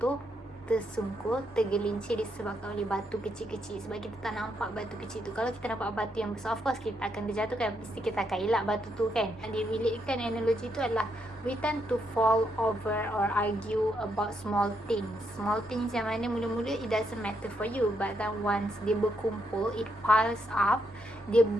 tersungkur, tergelincir disebabkan oleh batu kecil-kecil, sebab kita tak nampak batu kecil tu. Kalau kita nampak batu yang besar, of course kita akan terjatuhkan, mesti kita akan elak batu tu kan. Dia relatekan analogi tu adalah we tend to fall over or argue about small things yang mana mula-mula it doesn't matter for you, but then once dia berkumpul, it piles up, dia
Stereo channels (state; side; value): normal; both; correlation 0.78